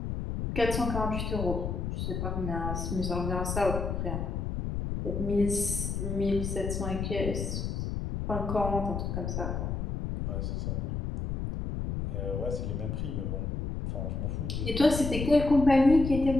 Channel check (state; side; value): noise; left; rumble, 3 dB below the sound